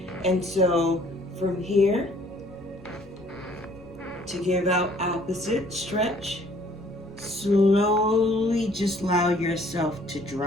And so from here to give out opposite stretch. Slowly just allow yourself to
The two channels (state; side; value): normal; both; correlation 0.59